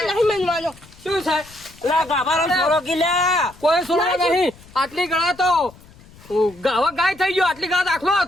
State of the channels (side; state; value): left; noise; rumble, 24 dB below the sound